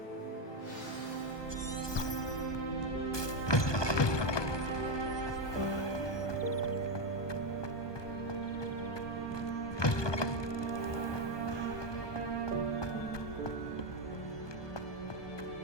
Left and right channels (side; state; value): right; late; 1.2 ms